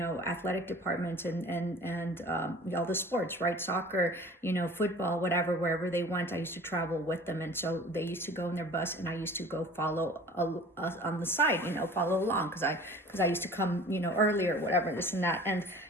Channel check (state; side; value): normal; both; correlation 0.44